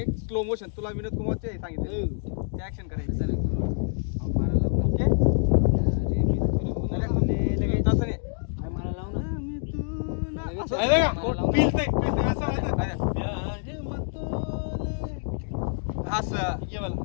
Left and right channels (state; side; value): silent; right; digital silence